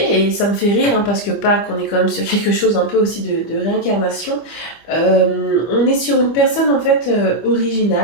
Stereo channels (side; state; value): right; late; 25 ms